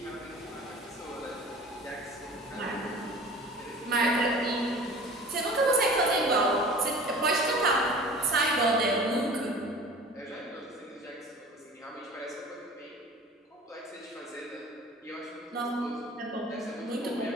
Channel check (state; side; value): normal; both; correlation 0.42